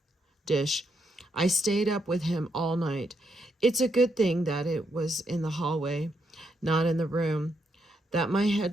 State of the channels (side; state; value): both; normal; correlation 0.79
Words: dish. I stayed up with him all night. It's a good thing that it was in the hallway, not in the room, that my